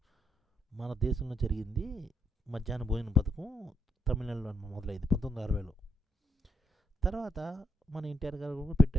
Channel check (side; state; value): both; normal; correlation 0.76